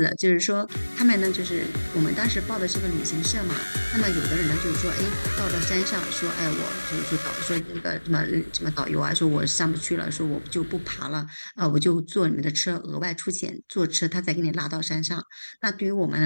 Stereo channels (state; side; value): inverted; both; correlation -1.00